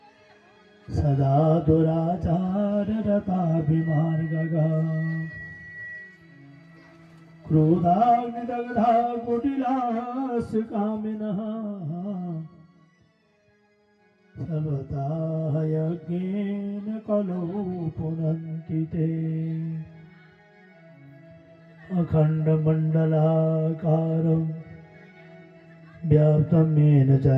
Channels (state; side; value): identical; both; correlation 1.00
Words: सदा दुराचाररताभिमार्गगा क्रोधाग्निदग्धा कुटिलास्य कामिनः सर्वथा यज्ञेन कलो पुनन्ति ते अखण्डमण्डलाकारं व्याप्तं येन